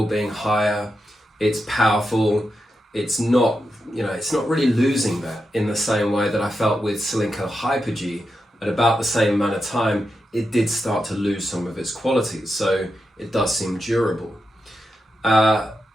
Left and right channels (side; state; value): both; normal; correlation 0.88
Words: being higher, it's powerful, it's not really losing that in the same way that I felt with Slinko Hyper G. At about the same amount of time, it did start to lose some of its qualities, so it does seem durable.